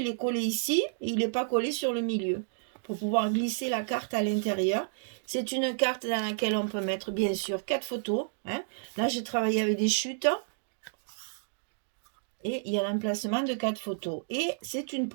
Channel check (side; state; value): left; silent; digital silence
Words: est collé ici et il n'est pas collé sur le milieu pour pouvoir glisser la carte à l'intérieur. C'est une carte dans laquelle on peut mettre bien sûr 4 photos. Hein. Là, j'ai travaillé avec des chutes. Et il y a l'emplacement de 4 photos. Et c'est une